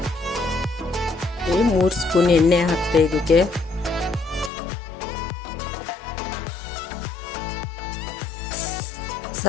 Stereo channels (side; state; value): right; drops out; at 4.5 s